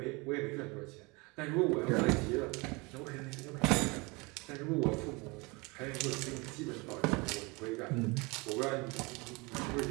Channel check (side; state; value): left; quieter; 26.7 dB